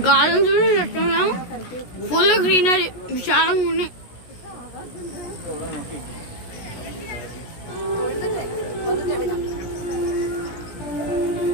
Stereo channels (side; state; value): right; late; 16 ms